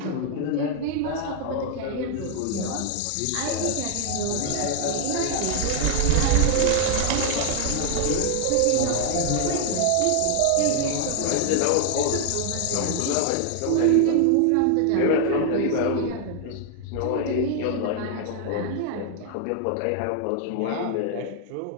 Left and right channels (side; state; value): both; different; correlation 0.00